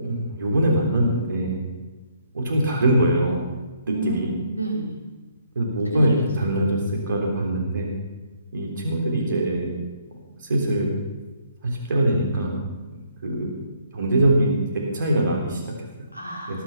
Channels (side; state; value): both; inverted; correlation -0.69